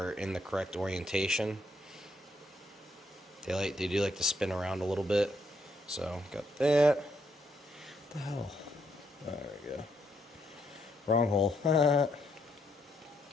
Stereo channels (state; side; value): normal; both; correlation 0.75